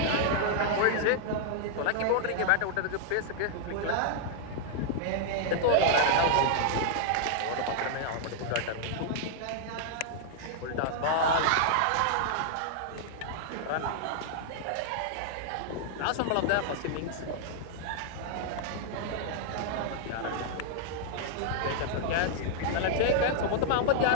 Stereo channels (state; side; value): different; both; correlation -0.01